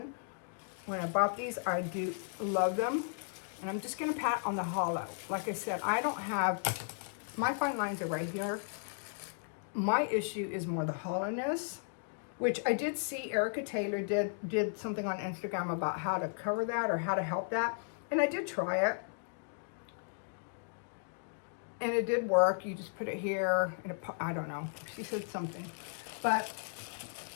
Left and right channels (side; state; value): right; silent; digital silence